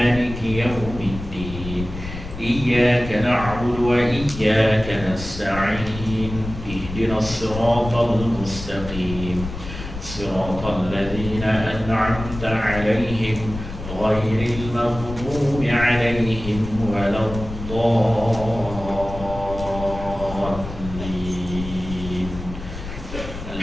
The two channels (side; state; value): left; noise; rumble, 10 dB below the sound